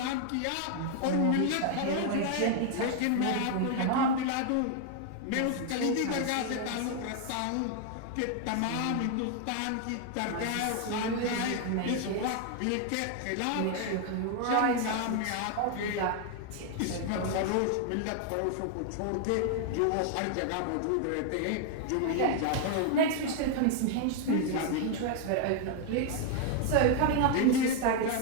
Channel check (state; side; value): different; both; correlation 0.00